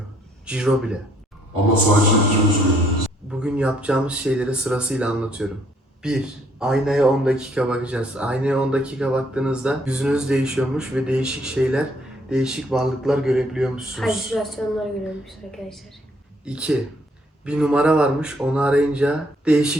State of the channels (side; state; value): both; normal; correlation 0.66